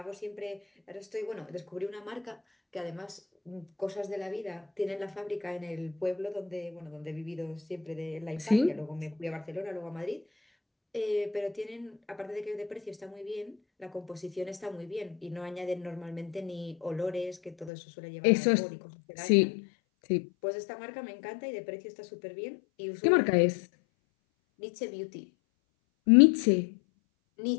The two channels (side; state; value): right; drops out; at 17.7 s